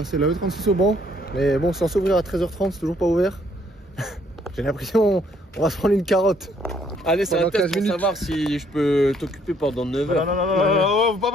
la E36 au banc. Mais bon, c'est censé ouvrir à 13h30, c'est toujours pas ouvert. J'ai l'impression on va se prendre une carotte. Allez, c'est un test pour minutes. savoir si je peux t'occuper pendant 9 heures. Non, faut pas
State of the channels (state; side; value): normal; both; correlation 0.66